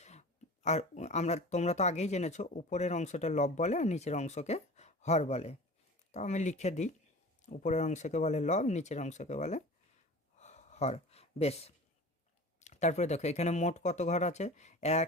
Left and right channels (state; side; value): normal; both; correlation 0.37